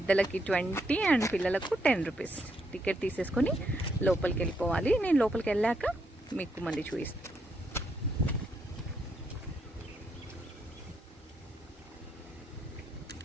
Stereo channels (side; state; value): both; normal; correlation 0.77